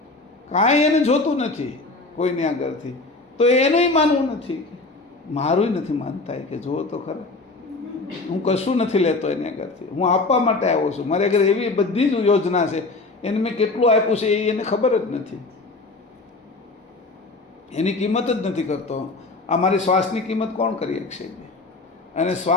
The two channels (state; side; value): quieter; right; 3.4 dB